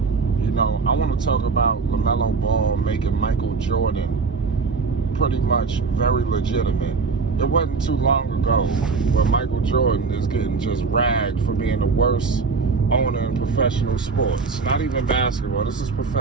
You know, I want to talk about Lamelo Ball making Michael Jordan pretty much very legitimate. It wasn't too long ago where Michael Jordan is getting just ragged for being the worst owner in professional sports. Not even basketball. This is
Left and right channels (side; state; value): left; quieter; 4.8 dB